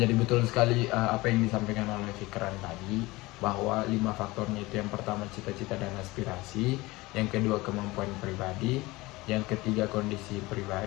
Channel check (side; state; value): right; quieter; 21.1 dB